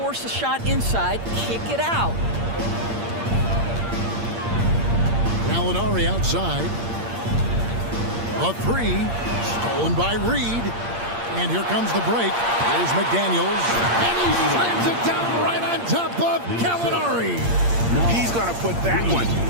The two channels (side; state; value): left; late; 8.6 ms